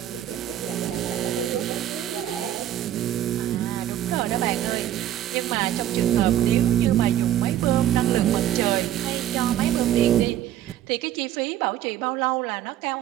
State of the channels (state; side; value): quieter; left; 12.0 dB